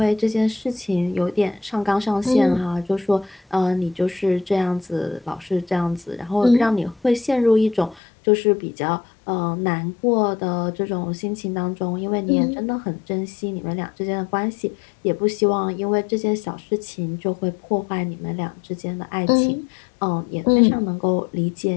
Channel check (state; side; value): drops out; right; at 8.0 s